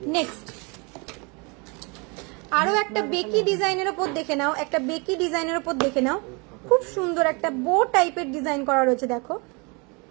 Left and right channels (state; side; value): quieter; left; 30.7 dB